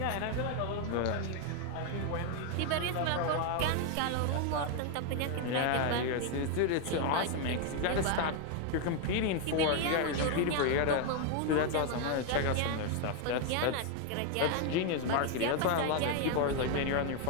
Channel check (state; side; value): different; both; correlation 0.01